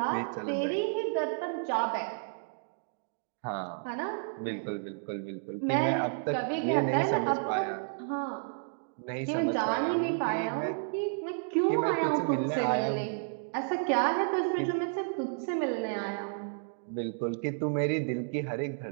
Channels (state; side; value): silent; left; digital silence